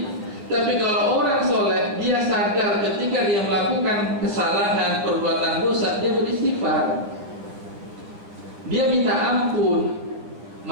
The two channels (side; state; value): left; late; 10 ms